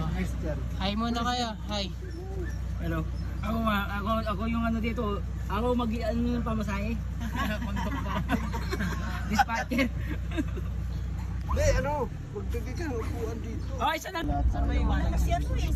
Christian. Hi muna kayo. Hi. Hello. Ako yung ano dito. Ako mag-ano yung pamasahe. Dispatcher. Hindi, ano? Magdagi ka, upuan dito. Oh, isa lang. Saan ba yung iwan? Si ano yan,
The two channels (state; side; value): identical; both; correlation 1.00